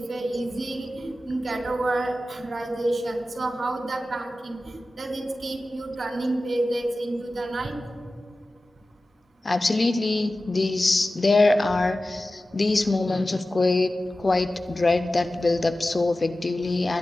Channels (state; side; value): normal; both; correlation 0.95